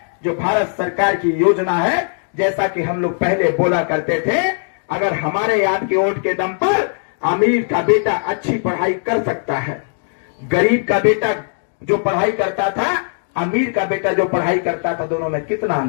जो भारत सरकार की योजना है, जैसा कि हम लोग पहले बोला करते थे, अगर हमारे आपके वोट के दम पर अमीर का बेटा अच्छी पढ़ाई कर सकता है, गरीब का बेटा जो पढ़ाई करता था, अमीर का बेटा जो पढ़ाई करता था, दोनों में कितना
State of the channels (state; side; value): silent; right; digital silence